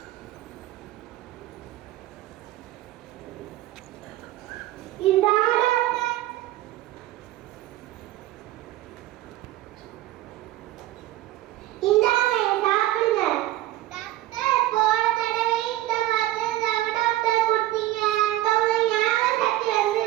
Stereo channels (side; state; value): left; quieter; 15.4 dB